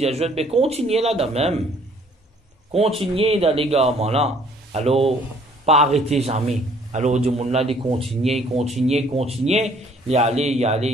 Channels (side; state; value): both; normal; correlation 0.59